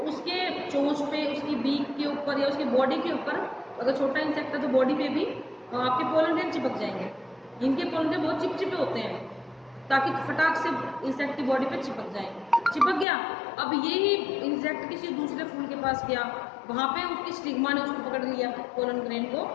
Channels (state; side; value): drops out; right; at 13.1 s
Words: उसके चोंच पे, उसकी बीक के ऊपर या उसकी बॉडी के ऊपर, अगर छोटा इंसेक्ट है तो बॉडी पे भी आपके पोलन ग्रेन चिपक जाएंगे। इनके पोलन ग्रेन बहुत चिपचिपे होते हैं ताकि फटाक से इंसेक्ट की बॉडी पे चिपक जाएंगे। चिपक गया, अब यही इंसेक्ट किसी दूसरे फूल के पास गया, वहां पे उसकी स्टिग्मा ने उसको पकड़ लिया पोलन ग्रेन को,